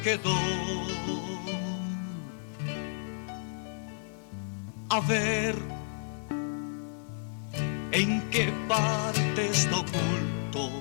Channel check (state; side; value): silent; right; digital silence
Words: quedó, a ver en qué parte está